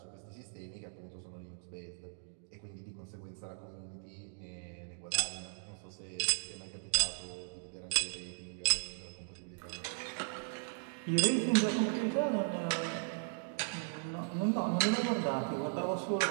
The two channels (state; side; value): silent; left; digital silence